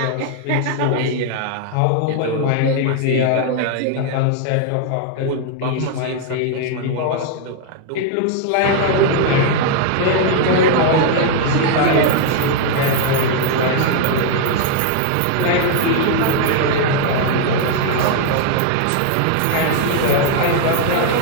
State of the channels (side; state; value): both; different; correlation 0.00